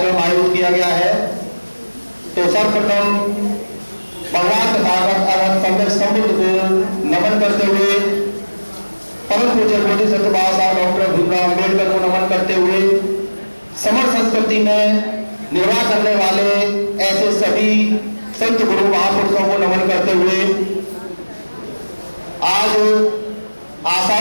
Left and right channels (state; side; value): inverted; both; correlation -1.00